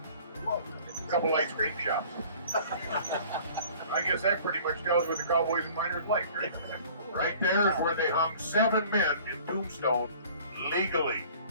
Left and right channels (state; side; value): inverted; both; correlation -0.49